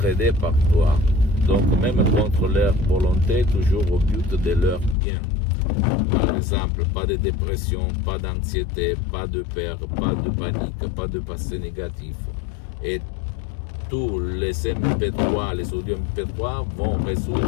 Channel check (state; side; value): drops out; right; at 5.0 s